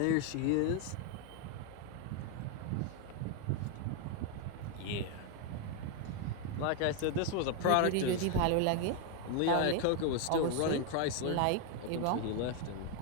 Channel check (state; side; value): different; both; correlation 0.01